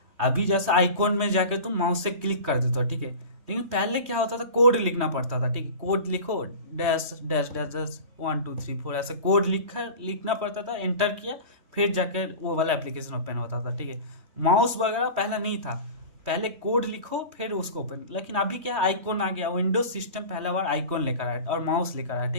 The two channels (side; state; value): left; late; 3.2 ms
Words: अभी जैसे आइकॉन में जाके तुम माउस से क्लिक कर देते हो, ठीक है। लेकिन पहले क्या होता था, कोड लिखना पड़ता था, ठीक है। कोड लिखो, डैश डैश डैश डैश 1 2 3 4 ऐसे कोड लिखना पड़ता था, एंटर किया, फिर जाके वो वाला एप्लीकेशन ओपन होता था, ठीक है। माउस वगैरह पहले नहीं था, पहले कोड लिखो फिर उसको ओपन। लेकिन अभी क्या आइकॉन आ गया, विंडोज सिस्टम पहला बार आइकॉन लेकर आया और माउस लेकर आया,